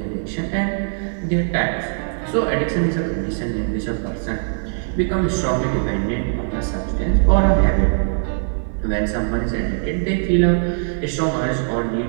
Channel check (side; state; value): left; silent; 59 dB below the other